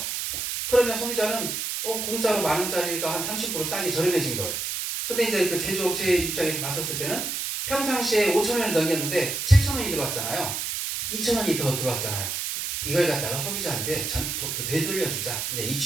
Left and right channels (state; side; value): noise; right; hiss, 3 dB below the sound